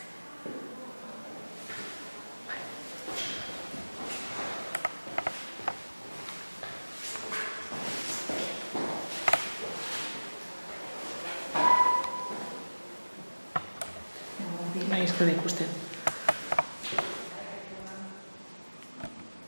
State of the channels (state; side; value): inverted; both; correlation -1.00